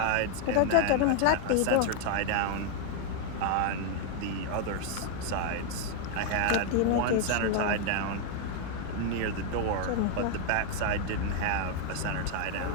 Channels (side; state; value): both; different; correlation 0.00